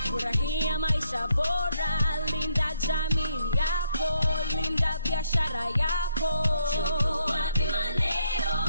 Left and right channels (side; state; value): both; inverted; correlation -0.73